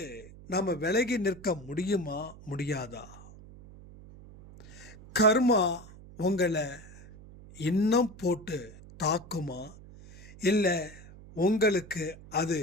நம்ம விலகி நிற்க முடியுமா முடியாதா? கர்மா உங்களை இன்னும் போட்டு தாக்குமா இல்லை உங்களுக்கு அது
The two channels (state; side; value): noise; right; hum, 19 dB below the sound